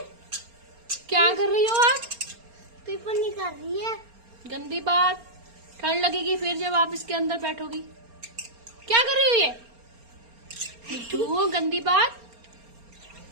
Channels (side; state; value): left; late; 4.3 ms